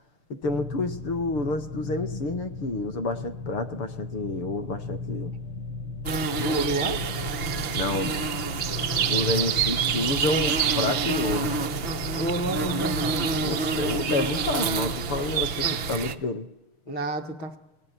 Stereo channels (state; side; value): late; right; 6.7 ms